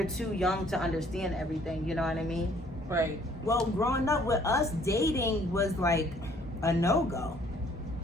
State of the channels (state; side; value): normal; both; correlation 0.60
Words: too young to understand everything. You know what I mean? Right. Well, growing up with us, dating was like a no-go.